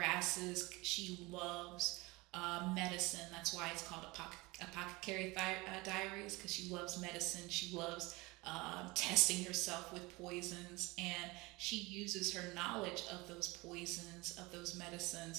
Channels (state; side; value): quieter; left; 23.2 dB